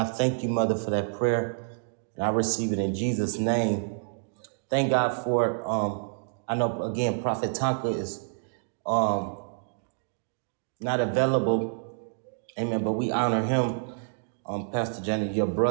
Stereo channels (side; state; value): left; silent; digital silence